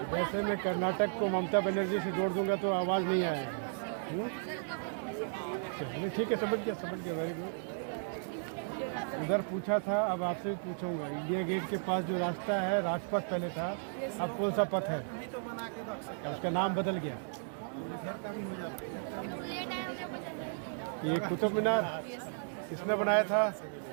जैसे मैं कर्नाटक को ममता बनर्जी से जोड़ दूंगा तो आवाज़ नहीं आएगी। चलिए ठीक है, समझ गया वेरी गुड। उधर पूछा था, अब आपसे भी पूछूंगा। इंडिया गेट के पास जो रास्ता है, राजपथ पहले था, अब कौन सा पथ है? उसका नाम बदल गया। ये कुतुब मीनार किसने बनाया था?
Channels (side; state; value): left; silent; digital silence